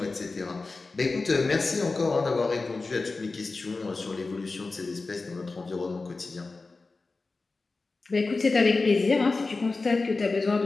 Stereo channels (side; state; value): right; quieter; 3.7 dB